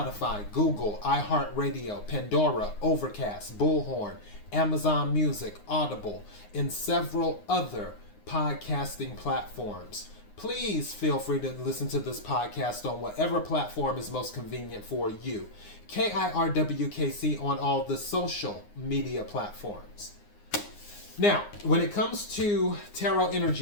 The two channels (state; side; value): late; right; 9.7 ms